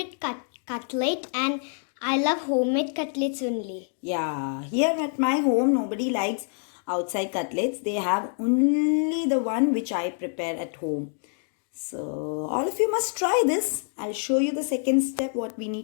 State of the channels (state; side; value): silent; right; 61 dB below the other